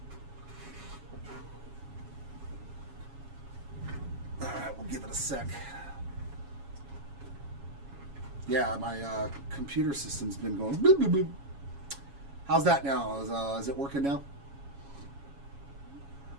Give it a sec. Yeah, my computer system's been going. Bloop, bloop, bloop. How's that now? Is it working now?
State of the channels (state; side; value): late; left; 7.2 ms